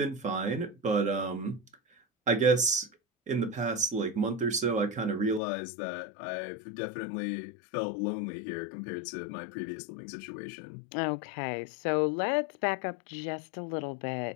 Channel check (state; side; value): drops out; right; at 5.4 s